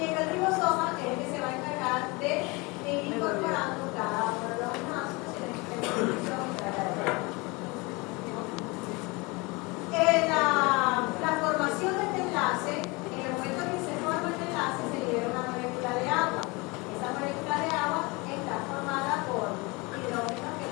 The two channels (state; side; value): quieter; right; 26.0 dB